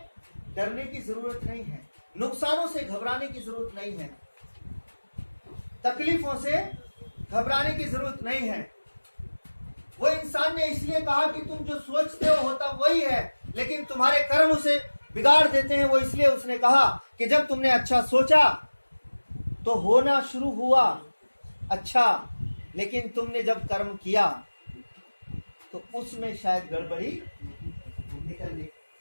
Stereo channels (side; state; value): both; inverted; correlation -1.00